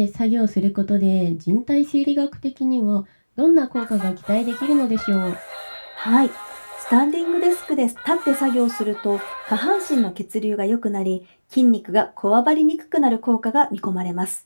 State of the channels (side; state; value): both; inverted; correlation -1.00